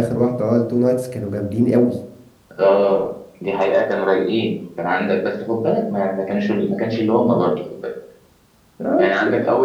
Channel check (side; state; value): both; identical; correlation 1.00